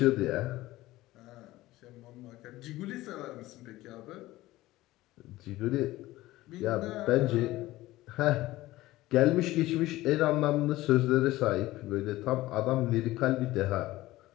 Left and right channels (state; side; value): quieter; right; 17.3 dB